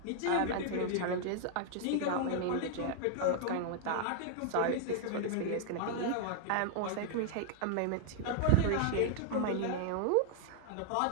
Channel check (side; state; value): both; different; correlation -0.01